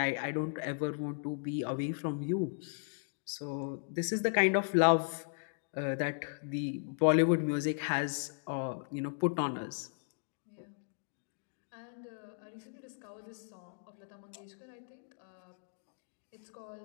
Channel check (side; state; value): right; silent; digital silence